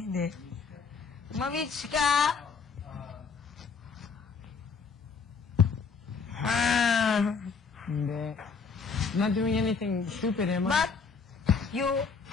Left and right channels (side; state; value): right; quieter; 5.3 dB